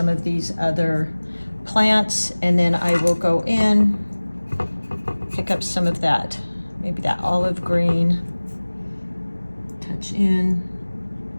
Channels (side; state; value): both; inverted; correlation -1.00